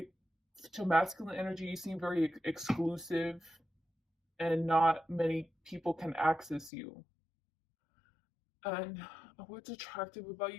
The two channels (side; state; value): right; drops out; at 6.7 s